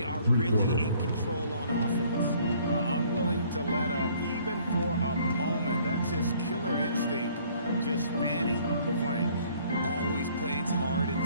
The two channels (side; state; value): both; inverted; correlation -0.59